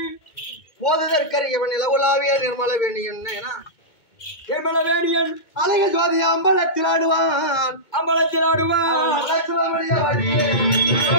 போதற்கரியவன் இலகுலாவிய நிர்மல வேணியன் நிர்மல வேணியன் அழக ஜோதி அம்பலத்தில் ஆடுவான்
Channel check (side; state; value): right; late; 2.2 ms